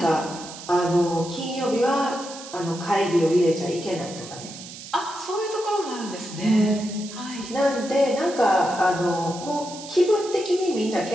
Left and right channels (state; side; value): noise; right; hiss, 13 dB below the sound